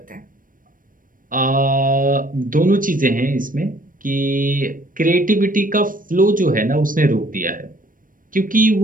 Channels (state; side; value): late; left; 0.40 ms